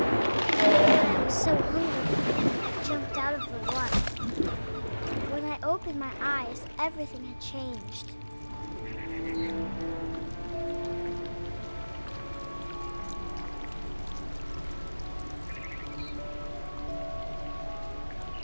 I was so hungry, I jumped out of the water. When I opened my eyes, everything had changed.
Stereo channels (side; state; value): both; inverted; correlation -1.00